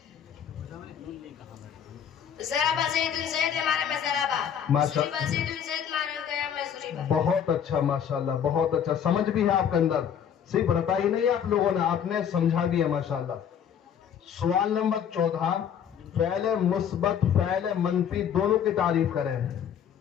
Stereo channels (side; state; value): right; quieter; 8.5 dB